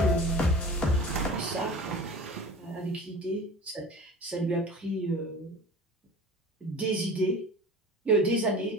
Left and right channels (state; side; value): normal; both; correlation 0.38